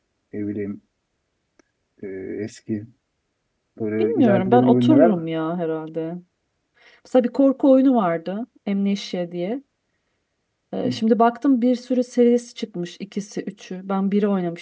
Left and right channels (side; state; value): both; identical; correlation 1.00